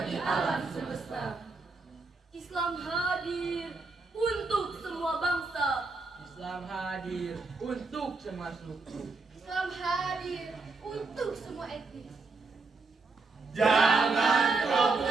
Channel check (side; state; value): left; quieter; 3.9 dB